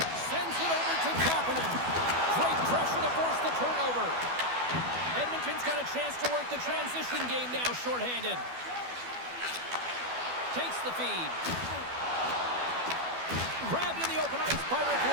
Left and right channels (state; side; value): late; left; 12 ms